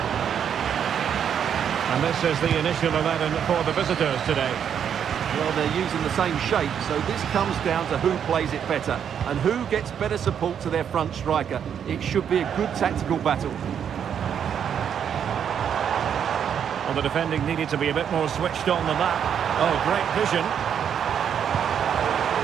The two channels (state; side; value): quieter; left; 8.4 dB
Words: And this is the initial 11 for the visitors today. Well, they're using the same shape, so this comes down to who plays it better and who gets better support to their front striker. It should be a good tactical battle. Well, the defending needed to be a bit more switched on than that. Oh, great vision.